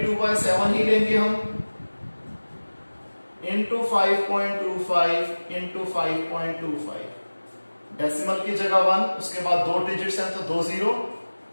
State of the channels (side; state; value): both; inverted; correlation -1.00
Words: ही लेंगे हम, इंटू 5.25 इंटू 5.25। डेसिमल की जगह 1, उसके बाद 2 डिजिट्स हैं तो 2 0।